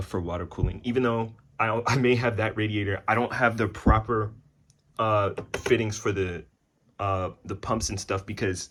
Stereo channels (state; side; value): identical; both; correlation 1.00